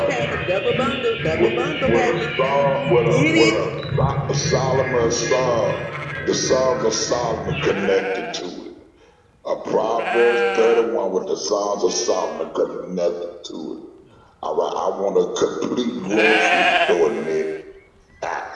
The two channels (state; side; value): identical; both; correlation 1.00